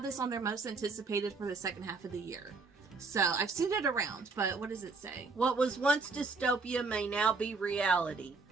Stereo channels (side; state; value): left; quieter; 4.2 dB